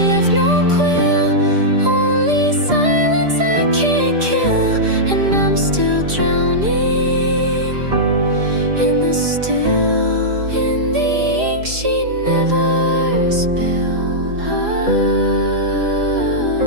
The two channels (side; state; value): left; late; 4.9 ms